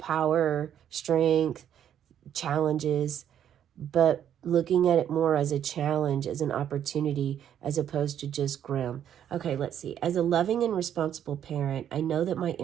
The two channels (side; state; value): left; quieter; 9.8 dB